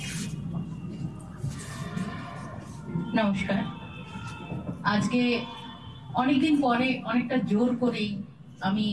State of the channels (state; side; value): identical; both; correlation 1.00